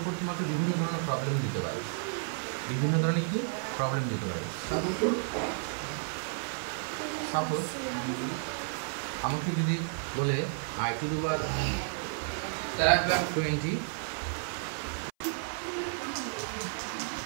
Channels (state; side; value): silent; left; 57 dB below the other